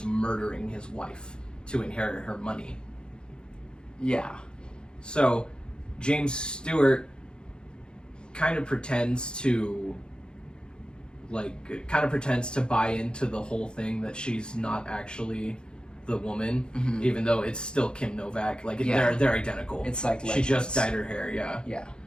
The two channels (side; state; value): right; late; 0.049 ms